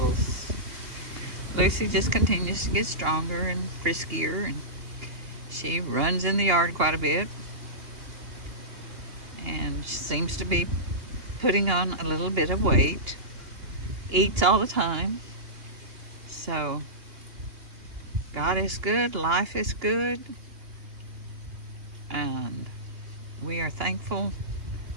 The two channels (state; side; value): late; left; 2.8 ms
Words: Lucy just continues to get stronger and friskier, and she runs in the yard quite a bit, and she seems to be putting on a little bit of weight, eats all the time. So God is good, life is good, and we are thankful